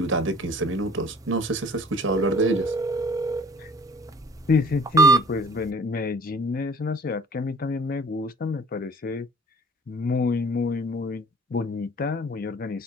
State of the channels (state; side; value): normal; both; correlation 0.51